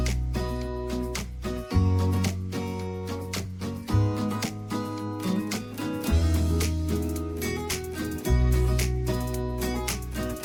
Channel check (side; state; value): both; identical; correlation 1.00